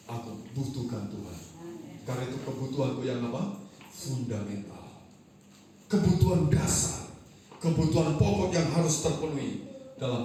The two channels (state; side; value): identical; both; correlation 1.00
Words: aku butuhkan Tuhan. Karena itu kebutuhanku yang apa? Fundamental. Kebutuhan dasar, kebutuhan pokok yang harus terpenuhi